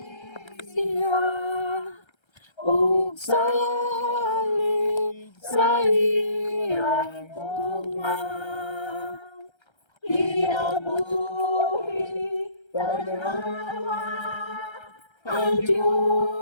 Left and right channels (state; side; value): late; right; 1.3 ms